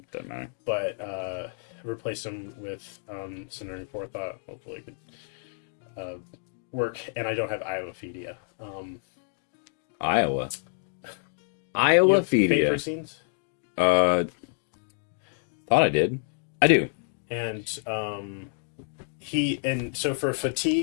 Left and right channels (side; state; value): right; silent; digital silence